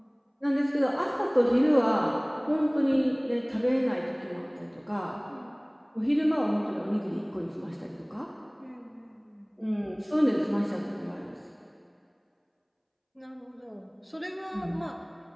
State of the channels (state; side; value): identical; both; correlation 1.00